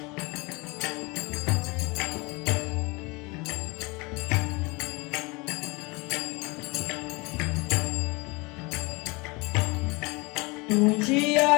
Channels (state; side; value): quieter; right; 26.2 dB